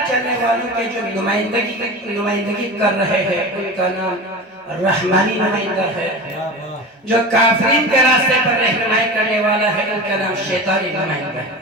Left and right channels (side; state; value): both; normal; correlation 0.30